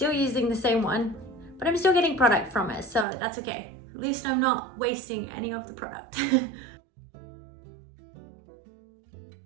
using the same one, but I'm still getting product from it, so that's okay. At least I'm not wasting any of the product.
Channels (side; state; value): left; drops out; at 3.1 s